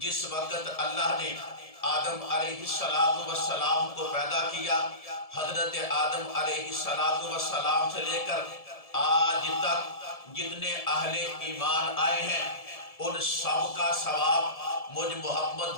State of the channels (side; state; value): right; late; 1.7 ms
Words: جس وقت اللہ نے آدم علیہ السلام کو پیدا کیا، حضرت آدم علیہ السلام سے لے کر آج تک جتنے اہل ایمان آئے ہیں ان سب کا ثواب مجھ